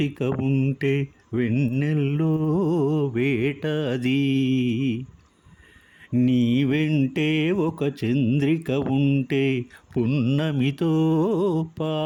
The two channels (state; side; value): identical; both; correlation 1.00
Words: ఉంటే వెన్నెల్లో వేటది. నీ వెంటే ఒక చంద్రిక ఉంటే పున్నమితో